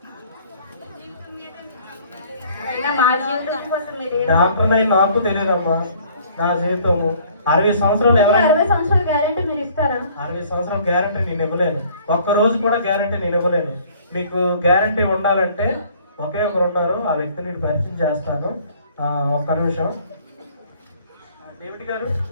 మా జీవితం కోసం మీరు డాక్టర్ అయి నాకు తెలియదమ్మా. నా జీవితము 60 సంవత్సరాలు. 60 సంవత్సరాల గ్యారెంటీ మీరు ఇస్తారా? 60 సంవత్సరాల గ్యారంటీ నేను ఇవ్వలేను. ఒక్క రోజు కూడా గ్యారంటీ నేను ఇవ్వలేను. మీకు గ్యారంటీ ఉండాలంటే ఒకే ఒకరు ఉన్నారు, ఆ వ్యక్తిని నేను పరిచయం చేస్తాను. ఒక్క నిమిషం. డేవిడ్ గారు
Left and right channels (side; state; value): both; inverted; correlation -0.56